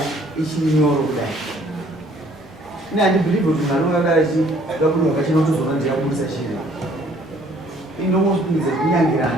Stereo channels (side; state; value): both; normal; correlation 0.60